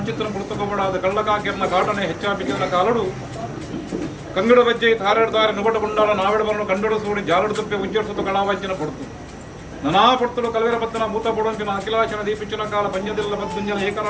ಪುಸ್ತಕಪಡಾದ ಕಳ್ಳಕಾಕಿರನ ಕಾಟನೆ ಹೆಚ್ಚಾಪಿക്കുന്ന ಕಾಲಡು ಕಂಗಡ ಬಜ್ಜೆ ತಾರೆಡ್ತಾರೆ ನುಗಟಗೊಂಡಾಳ ನಾವೆಡಬರನ್ನು ಕಂಡಡು ಸೂಡಿ ಜಾಲಡು ತುಪ್ಪೆ ಉಜ್ಜರಿಸುತ್ತ ಕಳಾವಾಜ್ಯನ ಪಡ್ತು ನನಾ ಪಡ್ತಲು ಕಲವೆರ ಪತ್ತನ ಭೂತ ಪಡೋಂಪಿನ ಅಖಿಲಾಶನ ದೀಪಿಚ್ಚಿನ ಕಾಲ ಪಂಜದಿಲ್ಲ ಬದ್ದುಂಜನ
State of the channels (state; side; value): identical; both; correlation 1.00